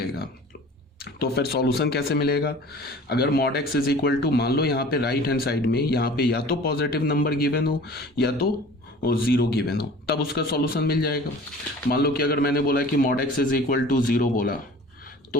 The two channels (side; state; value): both; normal; correlation 0.44